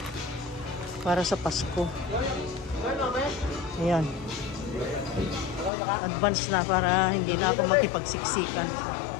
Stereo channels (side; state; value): right; drops out; at 5.7 s